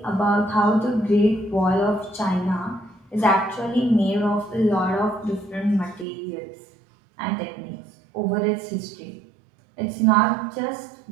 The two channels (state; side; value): drops out; left; at 6.1 s